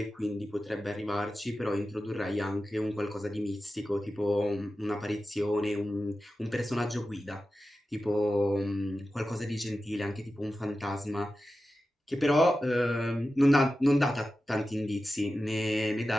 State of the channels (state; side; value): normal; both; correlation 0.93